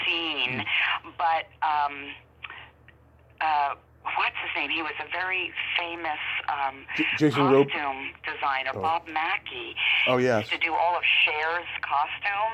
scene, but what's his name? He was a very famous costume designer, Bob Mackey. Oh, yes. He used to do all of Cher's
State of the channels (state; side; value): identical; both; correlation 1.00